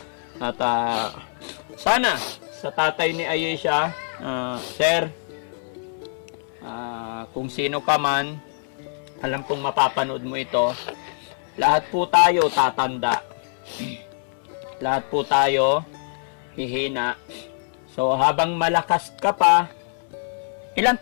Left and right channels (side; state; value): right; silent; 61 dB below the other